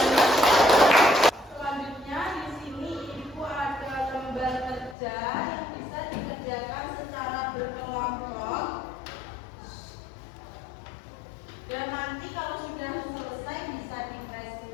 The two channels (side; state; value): right; drops out; at 5.0 s